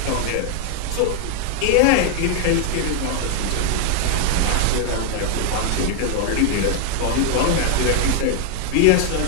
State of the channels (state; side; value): different; both; correlation 0.00